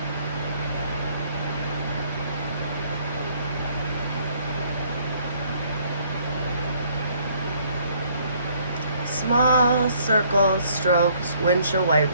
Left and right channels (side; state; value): both; inverted; correlation -0.63